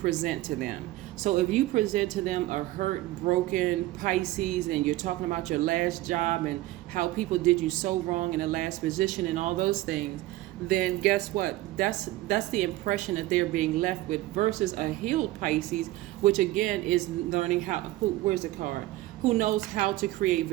to them. So if you present to them a hurt, broken Pisces, and you're talking about your last job and how people did you so wrong in the last position and all those things, then guess what? That's the impression that they're being left with, versus a healed Pisces, which again is learning where's the card? Who knows how to create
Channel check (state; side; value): quieter; left; 17.3 dB